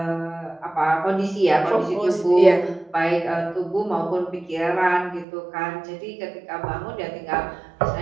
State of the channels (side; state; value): left; drops out; at 5.2 s